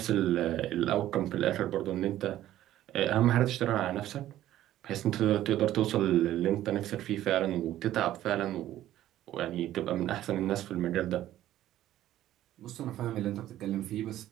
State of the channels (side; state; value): left; quieter; 13.4 dB